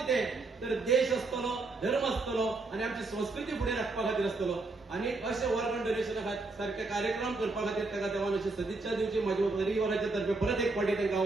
तर देश आसतलो, धर्म आसतलो आणि आमची संस्कृती फुडें राखपा खातीर आसतलो. आणि अशे ऑर्गन डोनेशना सारखे कार्यक्रम करपा खातीर ताका देवान अशी सदिच्छा दिवची. माझ्या परिवाराच्या तर्फे परत एक फावटी तांकां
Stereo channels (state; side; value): quieter; left; 3.5 dB